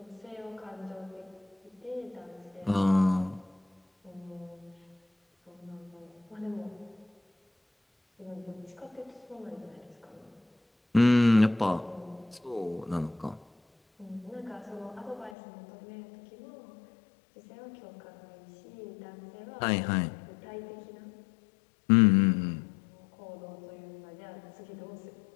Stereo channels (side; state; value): right; drops out; at 15.4 s